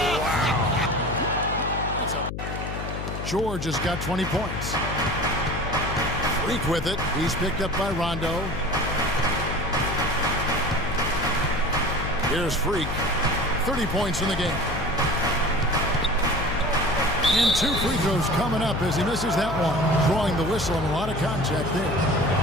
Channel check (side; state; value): left; noise; hum, 6 dB below the sound